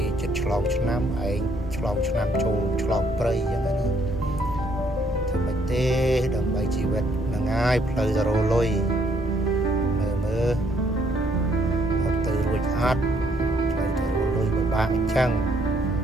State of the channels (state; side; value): normal; both; correlation 0.68